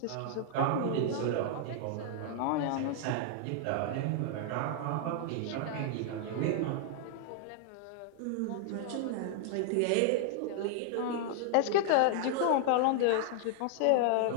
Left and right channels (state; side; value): different; both; correlation 0.00